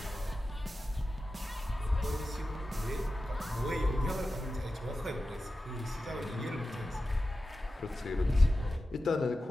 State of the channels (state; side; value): normal; both; correlation 0.93